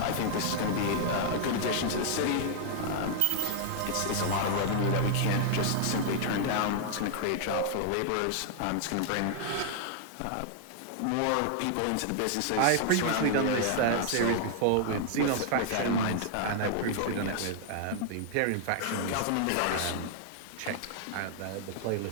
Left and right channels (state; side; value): different; both; correlation -0.01